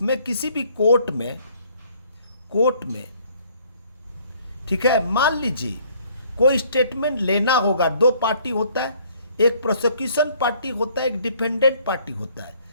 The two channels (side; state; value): both; inverted; correlation -0.61